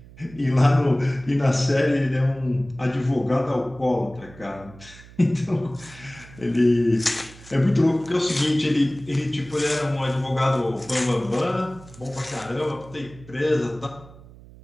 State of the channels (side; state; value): right; noise; hum, 21 dB below the sound